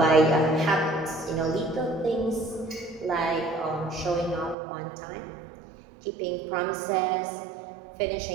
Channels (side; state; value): left; drops out; at 4.5 s